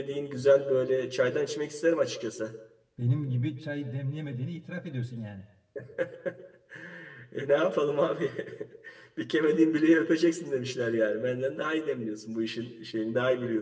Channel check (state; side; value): identical; both; correlation 1.00